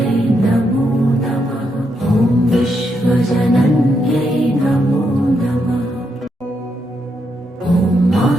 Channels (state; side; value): normal; both; correlation 0.80